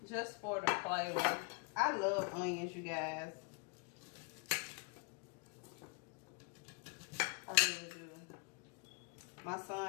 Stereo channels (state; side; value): quieter; right; 34.3 dB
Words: Just for the flavor. I love onions, you guys. I really do. My